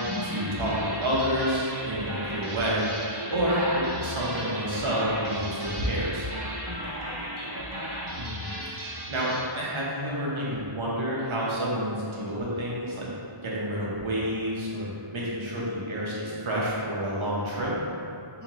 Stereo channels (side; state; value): left; late; 1.4 ms